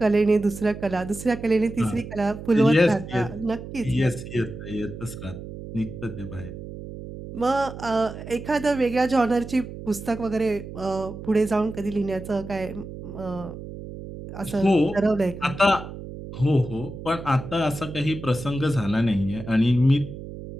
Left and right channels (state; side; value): noise; right; hum, 11 dB below the sound